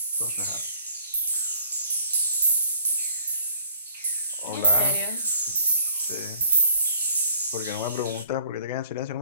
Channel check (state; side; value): inverted; both; correlation -0.59